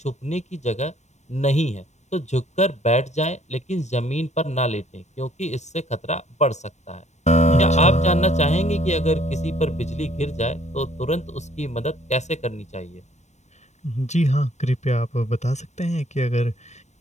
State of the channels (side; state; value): right; late; 0.34 ms